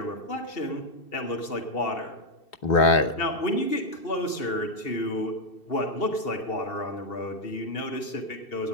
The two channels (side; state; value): right; late; 2.7 ms